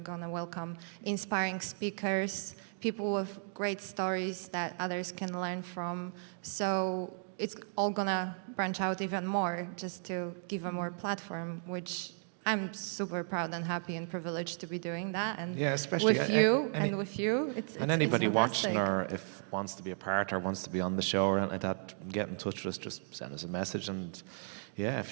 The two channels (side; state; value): left; silent; 55 dB below the other